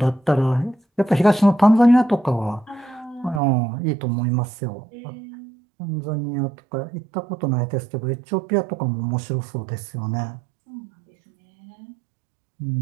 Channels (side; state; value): left; drops out; at 3.4 s